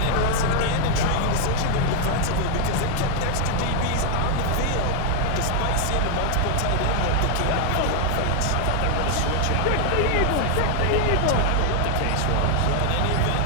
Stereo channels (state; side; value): different; both; correlation 0.00